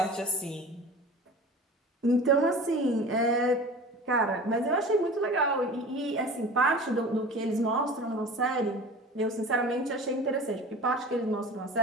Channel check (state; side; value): normal; both; correlation 0.38